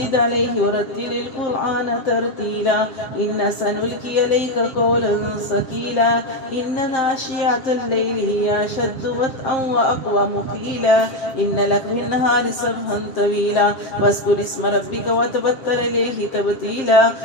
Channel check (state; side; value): late; right; 7.5 ms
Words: عليه ورتل القرآن ترتيلا إن سنلقي عليك قولا ثقيلا إن ناشئة الليل هي أشد وطئا وأقوم قيلا إن لك في النهار سبحا طويلا واذكر اسم ربك وتبتل إليه تبتيلا